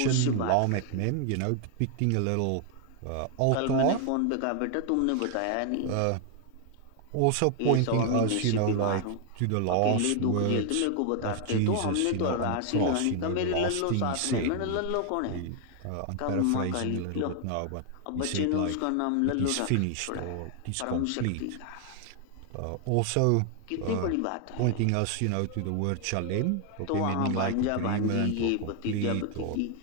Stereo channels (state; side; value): different; both; correlation 0.00